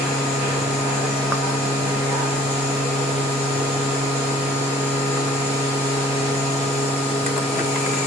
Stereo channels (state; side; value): normal; both; correlation 0.55